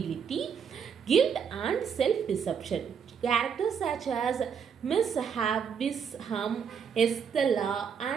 guilt, and self-deception. Characters such as Miss Havisham, Estella,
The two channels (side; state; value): left; quieter; 7.0 dB